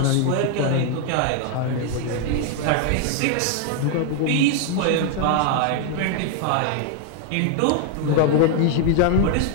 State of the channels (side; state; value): both; different; correlation 0.00